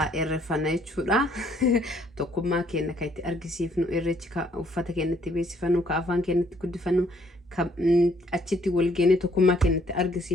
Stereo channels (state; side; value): normal; both; correlation 0.66